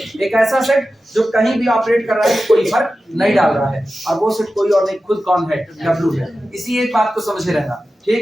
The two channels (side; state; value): both; normal; correlation 0.93